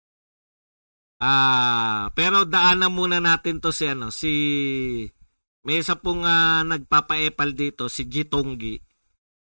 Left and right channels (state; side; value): inverted; both; correlation -1.00